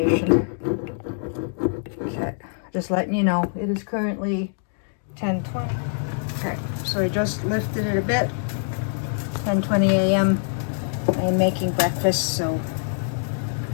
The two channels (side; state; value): right; silent; digital silence